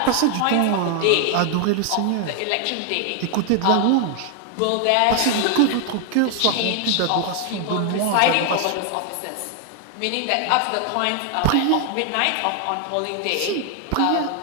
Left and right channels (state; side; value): different; both; correlation 0.00